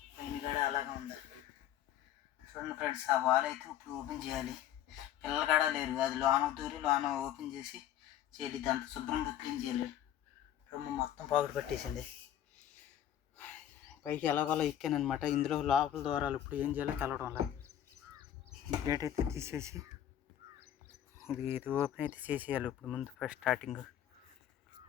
పైన కూడా అలాగే ఉంది. చూడండి ఫ్రెండ్స్, ఆ వాల్ అయితే ఇప్పుడు ఓపెన్ చేయాలి. పిల్లలు కూడా లేరు, అది లోన దూరి లోన ఓపెన్ చేసి చేయాలి. దాంతో శుభ్రంగా క్లీన్ చేయాలి. రొమ్ము మొత్తం పాకుడు పట్టేసింది. పైకి ఎలాగోలా ఎక్కానమాట. ఇందులో లోపల ద్వారాలు ఇప్పుడు ఏం చేయాలో తెలవడం లేదు. గేట్ అయితే తీసేసి ఇది ఓపెన్ అయితే చేసేయాలి. ఇప్పుడు ముందు ఫస్ట్ స్టార్టింగ్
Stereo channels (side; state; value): right; quieter; 11.2 dB